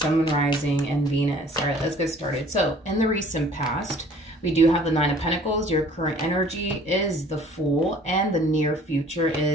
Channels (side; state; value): both; normal; correlation 0.52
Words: Moon, Rising, and Venus. All right, let's get started. So in the recent past, we do have the Nine of Pentacles. Your current energy is the Fool, and the near future